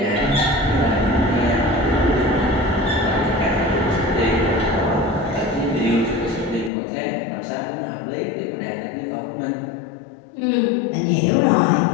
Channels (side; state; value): right; drops out; at 6.7 s